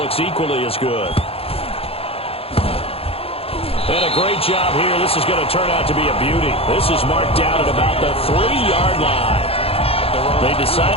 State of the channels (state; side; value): late; right; 0.28 ms